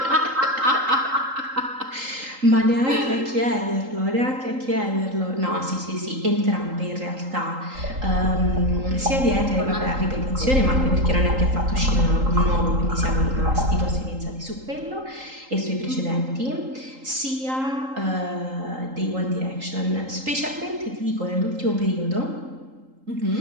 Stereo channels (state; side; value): late; left; 3.8 ms